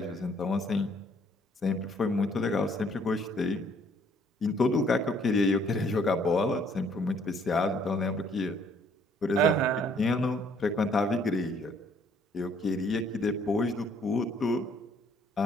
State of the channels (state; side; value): normal; both; correlation 0.63